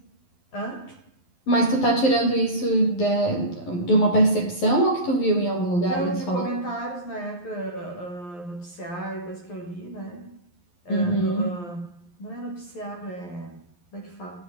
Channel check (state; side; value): late; right; 11 ms